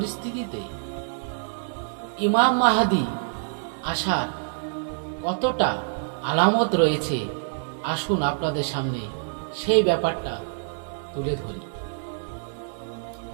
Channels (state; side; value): silent; left; 60 dB below the other